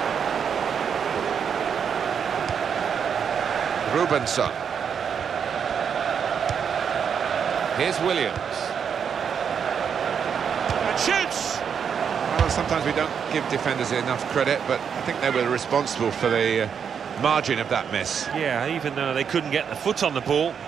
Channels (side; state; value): left; quieter; 7.2 dB